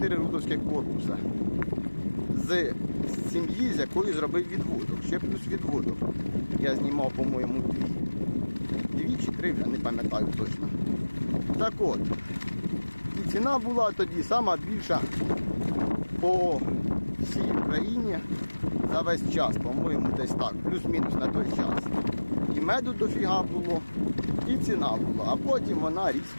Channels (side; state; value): both; inverted; correlation -1.00